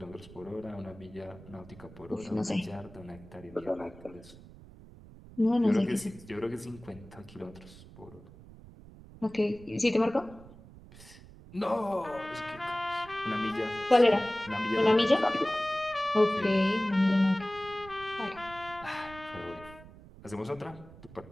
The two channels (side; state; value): right; noise; rumble, 19 dB below the sound